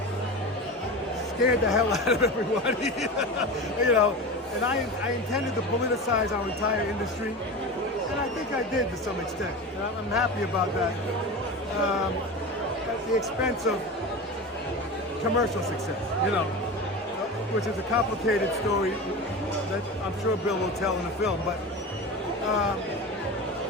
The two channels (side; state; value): both; normal; correlation 0.27